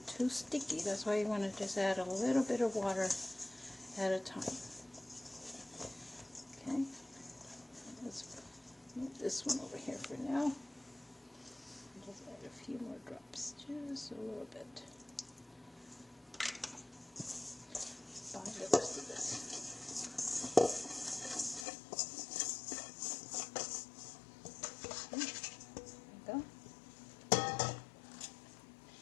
too sticky. That's why you want to just add a little bit of water at a time. Okay, let's move this one over here for now. Just add a few more drops, just a little bit. find the rest of this. There you go.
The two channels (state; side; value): drops out; right; at 21.7 s